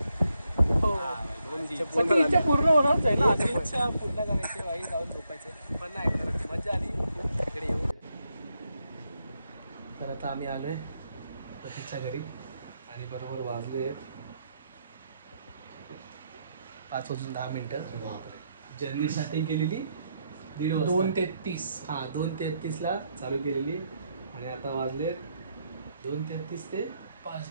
सगळी इच्छा पूर्ण होणारच आहे ना. इच्छा पूर्ण करायची बाई, जाऊन झोपायचं. पण नाही करत मजा आली इकडे येऊन. तर आता आम्ही आलोय प्रतीकच्या घरी. आणि बरोबर वाजले 5:10. जर्नीसाठी केलेली 2:33. हा 2:33 ला चालू केलेली. आणि आता वाजले 2:33 ते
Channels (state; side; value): inverted; both; correlation -0.80